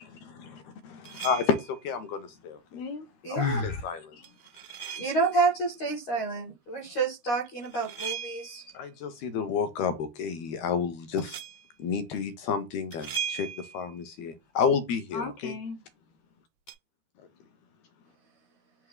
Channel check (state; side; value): late; right; 13 ms